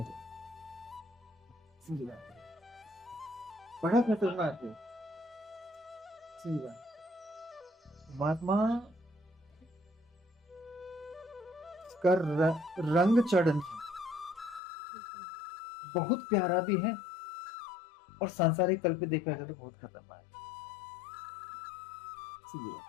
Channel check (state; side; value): drops out; right; at 14.6 s